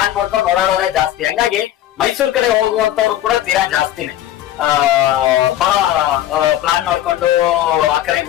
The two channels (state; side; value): quieter; right; 12.7 dB